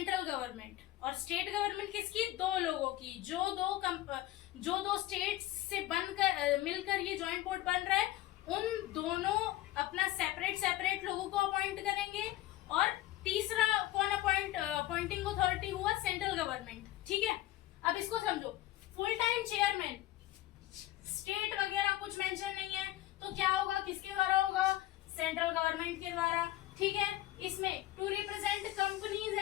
गवर्नमेंट, और स्टेट गवर्नमेंट किसकी? 2 लोगों की, जो दो स्टेट से बनकर मिलकर ये जॉइंट बोर्ड बन रहा है, उन दोनों अपना सेपरेट लोगों को अपॉइंट करेंगे। और तीसरा कौन अपॉइंटिंग अथॉरिटी हुआ? सेंट्रल गवर्नमेंट, ठीक है। अब इसको समझो, फुल टाइम चेयरमैन, स्टेट वगैरह कुछ मेंशन नहीं है, तो क्या होगा? किसके द्वारा होगा? सेंट्रल गवर्नमेंट के द्वारा, ठीक है। इसमें to represent companies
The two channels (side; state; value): right; quieter; 15.6 dB